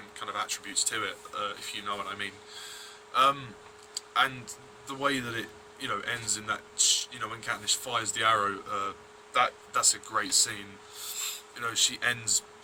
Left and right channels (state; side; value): identical; both; correlation 1.00